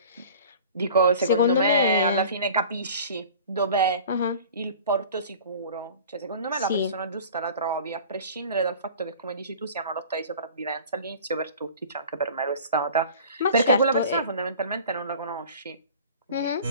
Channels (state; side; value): inverted; both; correlation -0.43